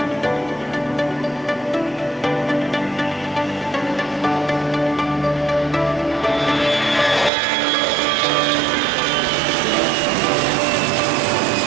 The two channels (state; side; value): drops out; left; at 7.3 s